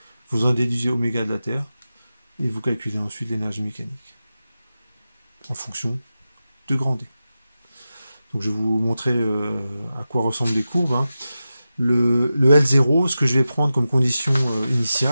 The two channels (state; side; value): inverted; both; correlation -0.93